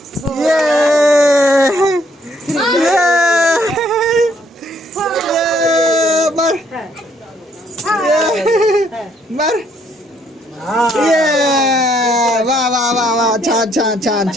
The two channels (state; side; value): normal; both; correlation 0.68